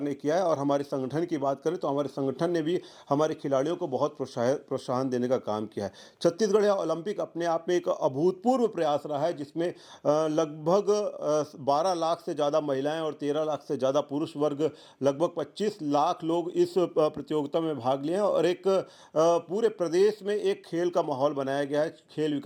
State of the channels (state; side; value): identical; both; correlation 1.00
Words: ने किया है और हमारे संगठन की बात करें तो हमारे संगठन ने भी हमारे खिलाड़ियों को बहुत प्रोत्साहन देने का काम किया है। छत्तीसगढ़ या ओलंपिक अपने आप में एक अभूतपूर्व प्रयास रहा है, जिसमें लगभग 12 लाख से ज़्यादा महिलाएँ और 13 लाख से ज़्यादा पुरुष वर्ग, लगभग 25 लाख लोग इस प्रतियोगिता में भाग लिए हैं और एक पूरे प्रदेश में एक खेल का माहौल बनाया गया है। खेल